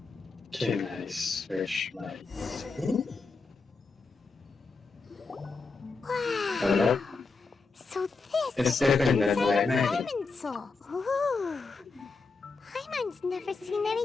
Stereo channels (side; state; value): right; quieter; 4.2 dB